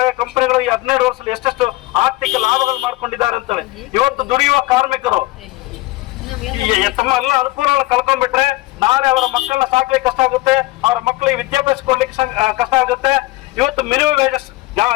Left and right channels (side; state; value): right; quieter; 19.6 dB